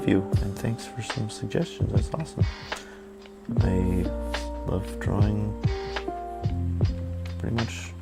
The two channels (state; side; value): identical; both; correlation 1.00